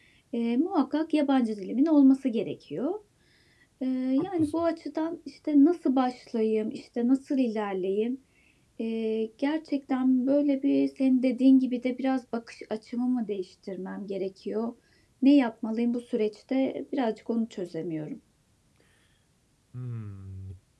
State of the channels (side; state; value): both; identical; correlation 1.00